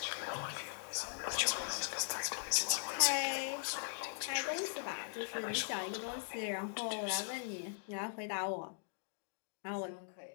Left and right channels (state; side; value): silent; right; digital silence